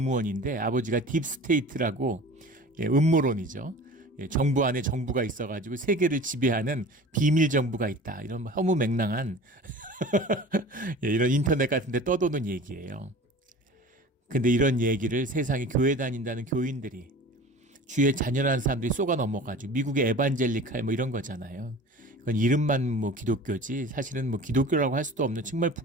아버지가 딥스테이트라고 음모론이죠. 정부 안에 정부가 있어가지고 세계를 지배하는 비밀 정부가 있다. 이런 허무맹랑한 이런 인터넷 같은 데 떠도는 얘기예요. 근데 이런 얘기를 세상에 교회 다닌다는 교인들이, 주의 자녀라는 사람들이 쏘가 넘어가지고 미국의 에반젤리칼 이런 거잖아요. 그건 이름만 기독교지 사실은 기독교라고 할 수도 없는 정말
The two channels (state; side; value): normal; both; correlation 0.40